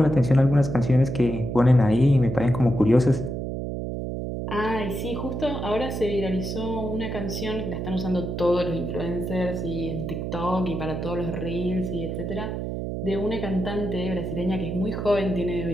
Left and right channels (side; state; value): right; noise; hum, 4 dB below the sound